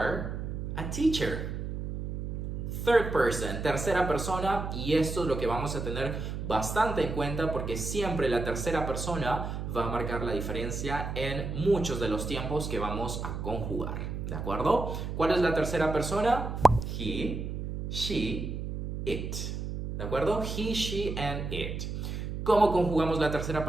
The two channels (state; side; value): noise; right; hum, 5 dB below the sound